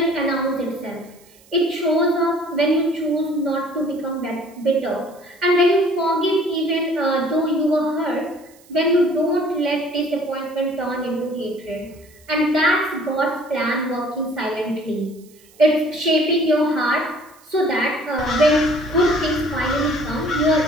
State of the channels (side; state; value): right; noise; hiss, 28 dB below the sound